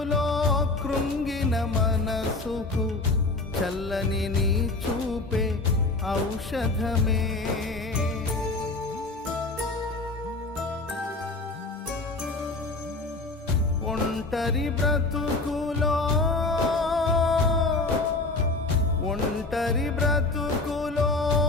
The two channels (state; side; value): quieter; right; 3.2 dB